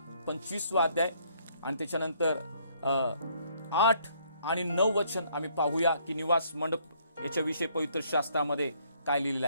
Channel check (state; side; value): inverted; both; correlation -0.66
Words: 25वा अध्याय आणि त्याच्यानंतर 8 आणि 9 वचन आम्ही पाहूया की निवास मंडप याच्याविषयी पवित्र शास्त्रामध्ये काय लिहिलेलं